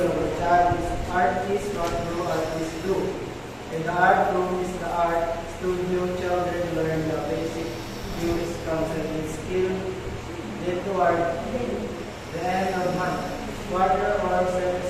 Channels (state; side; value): identical; both; correlation 1.00